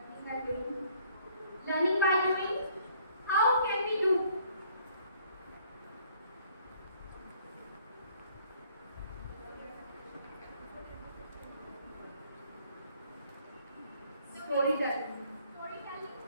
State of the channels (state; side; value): inverted; both; correlation -0.61